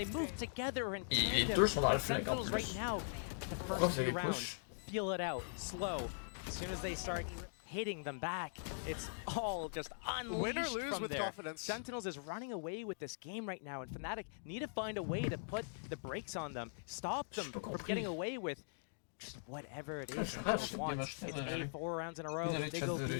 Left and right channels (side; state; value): right; silent; digital silence